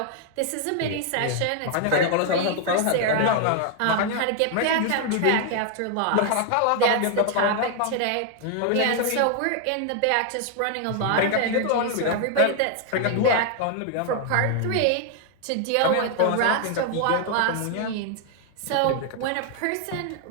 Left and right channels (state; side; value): different; both; correlation 0.00